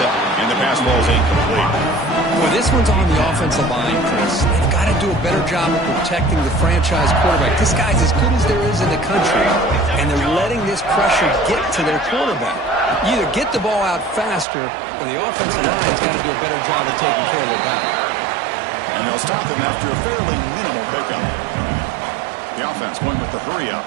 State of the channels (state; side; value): drops out; left; at 14.5 s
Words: and the pass ball is incomplete. Well, this one's on the offensive line, Chris. They've got to do a better job of protecting the franchise quarterback. This guy's as good as there is in the country, and they're letting this pressure get to their quarterback. You either get the ball out faster, or the offensive line's got to do a better job of taking care of their guy. And they'll stop him after a fairly minimal pickup. The offense going with the hurry up.